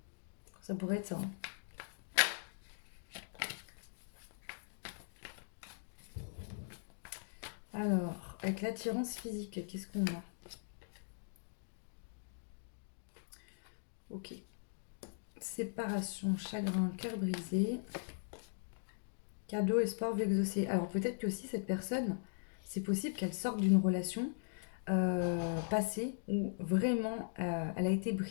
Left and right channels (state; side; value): silent; right; digital silence